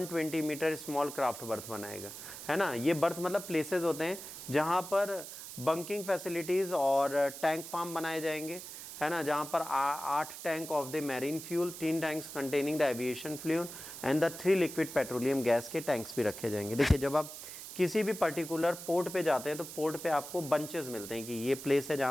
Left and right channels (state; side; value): noise; right; hiss, 11 dB below the sound